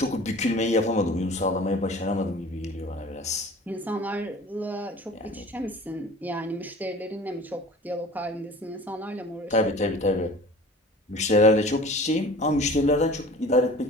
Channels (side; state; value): both; normal; correlation 0.43